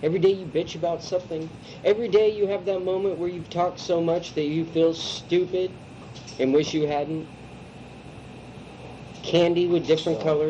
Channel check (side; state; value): both; identical; correlation 1.00